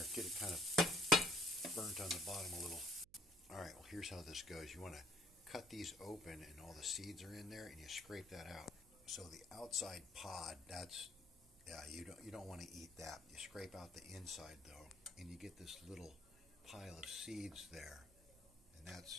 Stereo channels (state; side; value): noise; right; hum, 26 dB below the sound